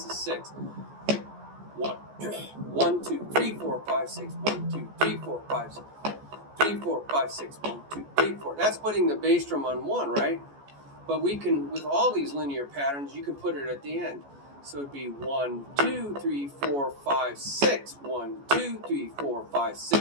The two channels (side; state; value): left; late; 14 ms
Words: is 6. 1, 2, 3, 4, 5, 6. 1, 2, 3, 4, 5, 6. 3, 4, 5, 6. 1, 2, 3, 4. That's putting the bass drum on 1, right? But we can, with all these linear patterns, you can put it at the end. So it'd be 1, 2, 3, 4, 5, 6. 1, 2, 3, 4, 5,